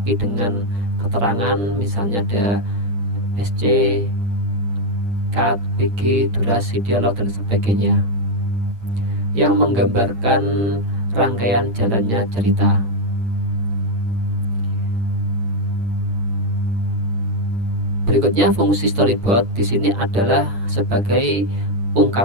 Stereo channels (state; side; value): late; left; 8.9 ms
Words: dengan keterangan, misalnya ada SC, cut, BG, durasi, dialog, dan sebagainya, yang menggambarkan rangkaian jalannya cerita. Berikutnya, fungsi storyboard di sini adalah sebagai